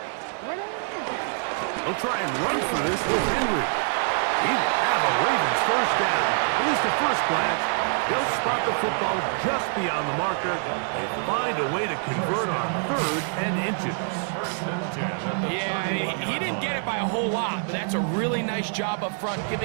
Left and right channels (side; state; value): left; silent; 61 dB below the other